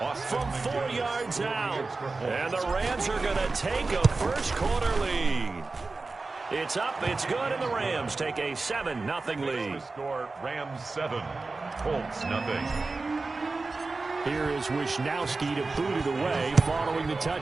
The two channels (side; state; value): left; quieter; 3.7 dB